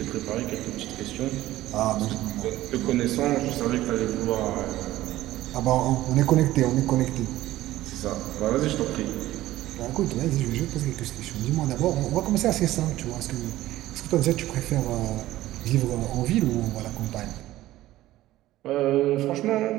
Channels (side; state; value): left; quieter; 15.5 dB